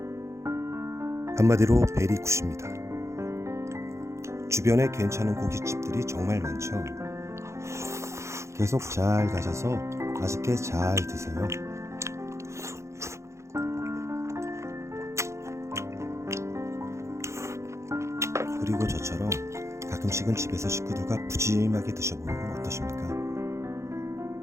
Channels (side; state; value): left; late; 0.14 ms